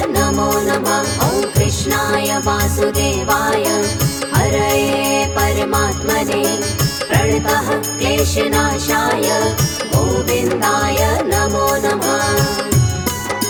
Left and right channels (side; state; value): both; identical; correlation 1.00